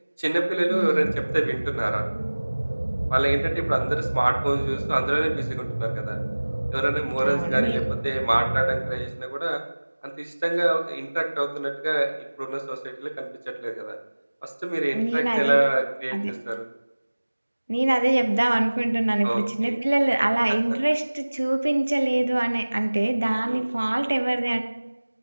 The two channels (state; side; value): inverted; both; correlation -1.00